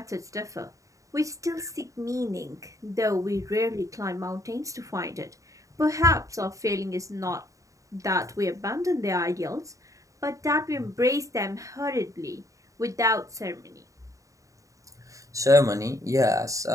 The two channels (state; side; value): late; left; 0.16 ms